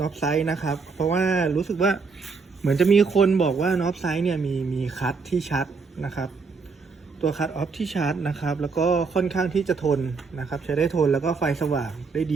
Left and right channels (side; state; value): left; quieter; 4.8 dB